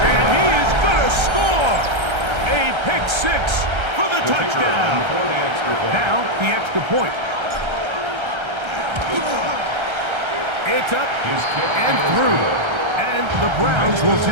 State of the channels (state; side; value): late; left; 1.3 ms